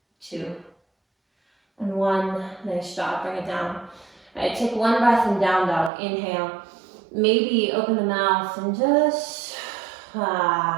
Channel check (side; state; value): left; drops out; at 5.9 s